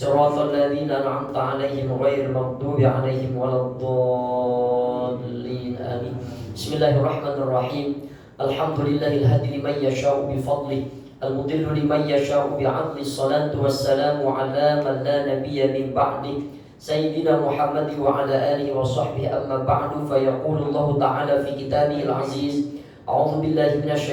ladzina an'amta 'alaihim ghairil maghdubi 'alaihim waladdallin. Amin. Bismillahirrahmanirrahim. Alhamdulillahil hadi liman yasha'u bi fadlihi al-mudillu liman yasha'u bi 'adli. Shalatu wassalamu 'ala man la nabiyya min ba'di Sayyidina Muhammad wa ala alihi wa sahbihi. Amma ba'du, fa yaqulu Allah ta'ala fi kitabihil aziz. A'udzu billahi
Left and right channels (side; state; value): both; identical; correlation 1.00